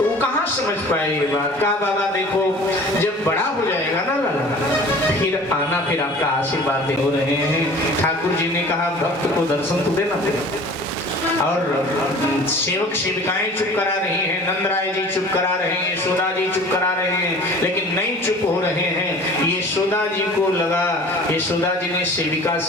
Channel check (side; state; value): both; normal; correlation 0.44